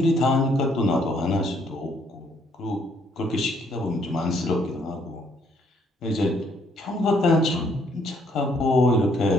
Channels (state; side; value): normal; both; correlation 0.68